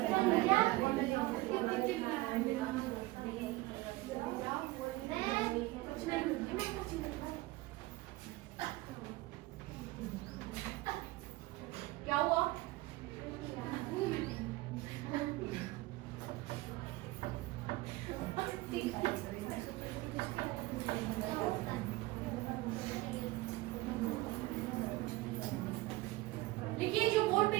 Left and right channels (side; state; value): left; quieter; 19.9 dB